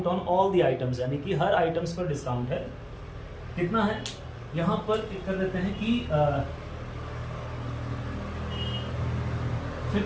on all the items, यानी कि हर आइटम्स पर डिस्काउंट है। कितना है? यहां पर कर देते हैं कि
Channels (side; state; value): both; identical; correlation 1.00